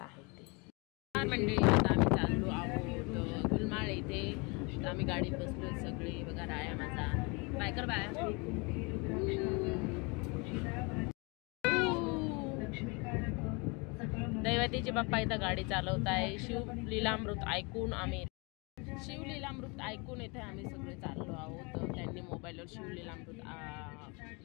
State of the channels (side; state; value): right; quieter; 29.7 dB